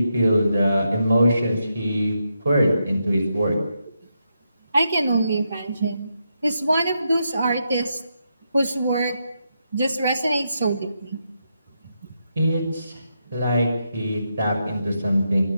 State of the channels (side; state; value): both; inverted; correlation -0.83